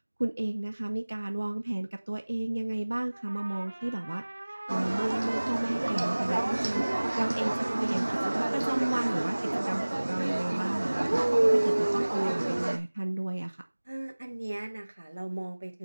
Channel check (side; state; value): both; inverted; correlation -1.00